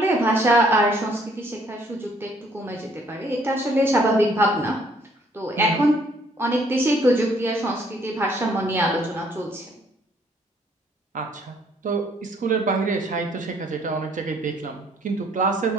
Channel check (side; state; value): both; normal; correlation 0.64